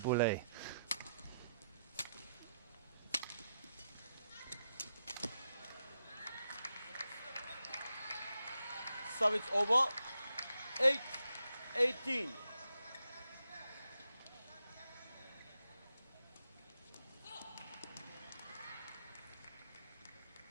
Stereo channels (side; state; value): both; inverted; correlation -0.83